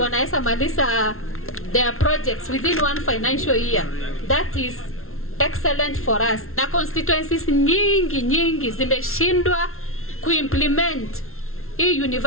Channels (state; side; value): late; right; 0.62 ms